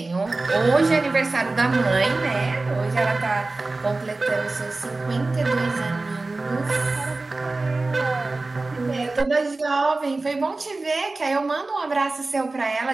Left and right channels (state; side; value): quieter; left; 3.3 dB